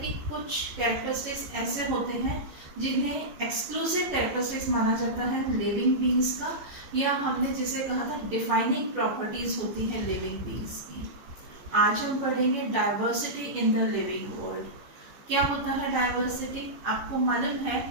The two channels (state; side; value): late; left; 14 ms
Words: कुछ कैरेक्टरिस्टिक्स ऐसे होते हैं जिन्हें एक्सक्लूसिव कैरेक्टरिस्टिक्स माना जाता है लिविंग बींग्स का, या हमने जिसे कहा था डिफाइनिंग प्रॉपर्टीज होती हैं लिविंग बींग्स की। आज हम पढ़ेंगे diversity in the living world. क्या होता है डाइवर्सिटी? आपको मालूम